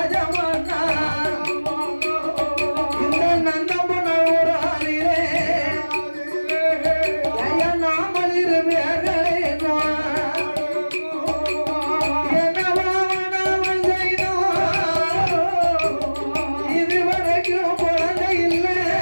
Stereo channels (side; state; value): both; inverted; correlation -1.00